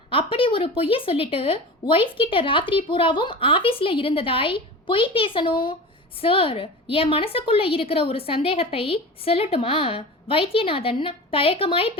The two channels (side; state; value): both; normal; correlation 0.32